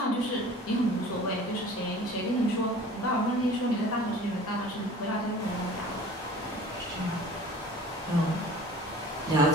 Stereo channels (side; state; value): both; normal; correlation 0.44